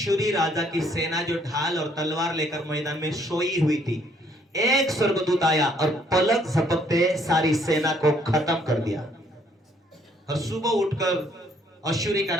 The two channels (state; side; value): normal; both; correlation 0.66